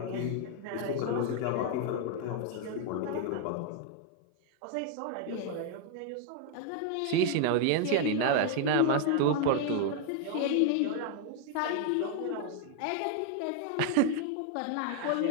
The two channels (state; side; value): different; both; correlation 0.00